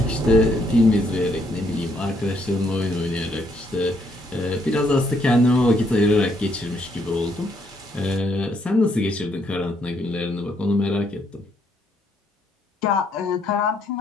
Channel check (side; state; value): both; normal; correlation 0.72